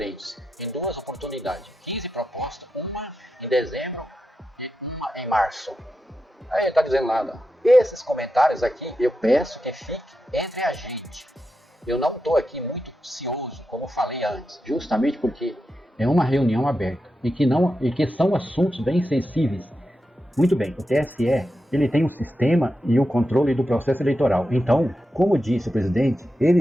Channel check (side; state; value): both; normal; correlation 0.88